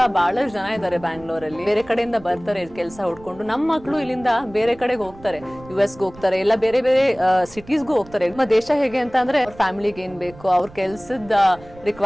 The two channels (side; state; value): right; noise; rumble, 21 dB below the sound